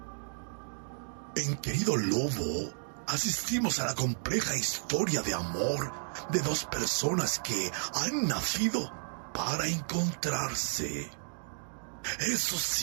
En Querido Lobo, asistimos a la compleja historia de amor de dos personas que han nacido para encontrarse. Eso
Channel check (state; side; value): silent; left; digital silence